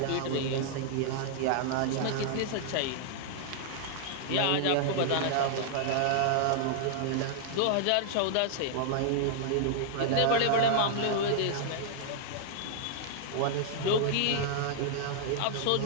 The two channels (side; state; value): both; different; correlation -0.01